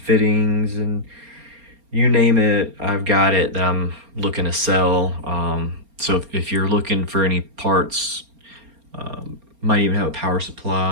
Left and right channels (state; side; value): late; left; 4.3 ms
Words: and you name it, I've got it that I'm looking to sell. So if you're looking for any parts, might even have a power